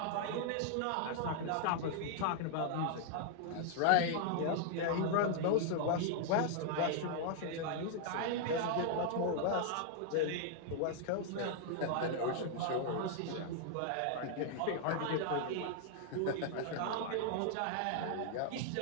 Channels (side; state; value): both; different; correlation -0.01